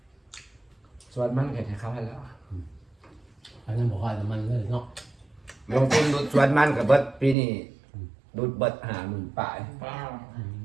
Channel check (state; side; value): drops out; left; at 7.4 s